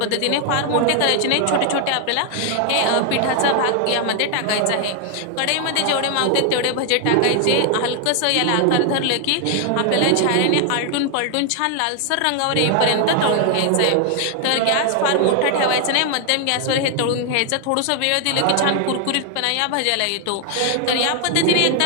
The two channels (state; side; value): different; both; correlation 0.00